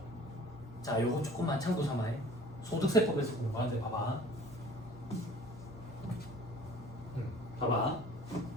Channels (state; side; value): normal; both; correlation 0.48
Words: 자, 요거 조금만 참고 삼아요. 소득세법에서 공부하는데 봐봐. 봐봐.